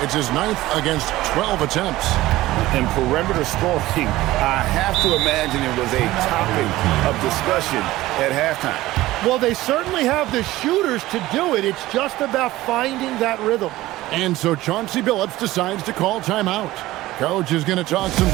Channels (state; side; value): quieter; left; 17.0 dB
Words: his 9th against 12 attempts. And perimeter scoring, I have to imagine it was a topic of discussion at halftime. Well, they certainly have the shooters to do it. It's just about finding that rhythm. And so Chauncey Billups decides to call timeout. Coach is going to talk some